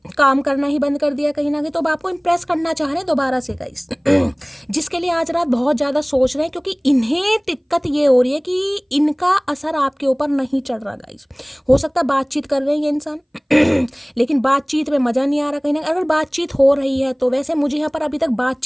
काम करना ही बंद कर दिया कहीं ना कहीं। तो अब आपको इम्प्रेस करना चाह रहे हैं दोबारा से गाइस जिसके लिए आज रात बहुत ज़्यादा सोच रहे हैं, क्योंकि इन्हें दिक्कत ये हो रही है कि इनका असर आपके ऊपर नहीं चढ़ रहा गाइस। हो सकता है बातचीत कर रहे हैं ये इंसान लेकिन बातचीत में मज़ा नहीं आ रहा कहीं ना। अगर बातचीत हो रही है तो वैसे मुझे यहाँ पर अभी तक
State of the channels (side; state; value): both; identical; correlation 1.00